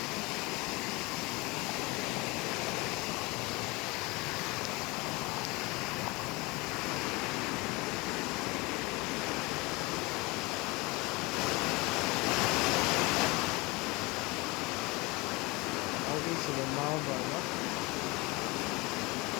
ဒီစီမောင်းပေါ့နော်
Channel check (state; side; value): quieter; right; 24.6 dB